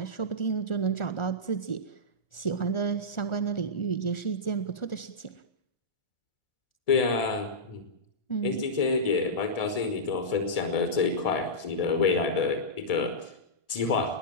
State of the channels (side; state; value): right; late; 1.7 ms